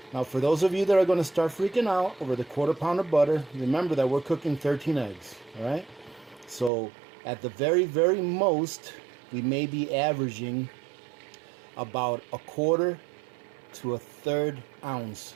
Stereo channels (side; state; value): left; drops out; at 6.7 s